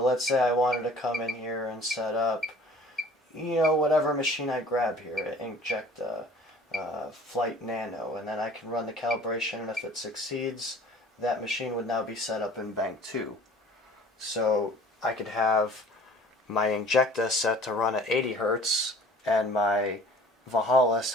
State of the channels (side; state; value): both; normal; correlation 0.49